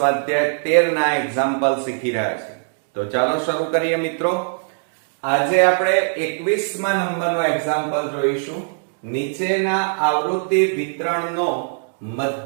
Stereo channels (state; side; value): silent; left; digital silence